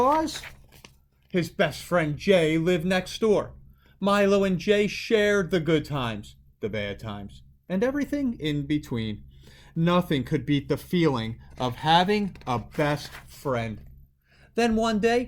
his best friend Jay lived next door. Milo and Jay shared the good times, the bad times, and everything in between. Nothing could beat the feeling of having a best friend. Then one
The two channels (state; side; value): identical; both; correlation 1.00